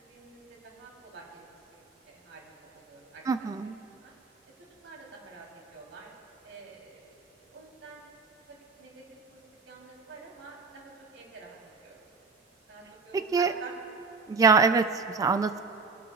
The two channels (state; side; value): quieter; left; 4.7 dB